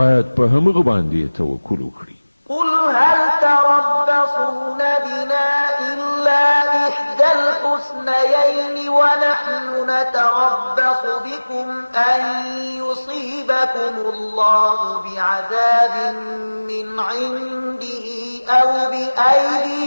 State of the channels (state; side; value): inverted; both; correlation -1.00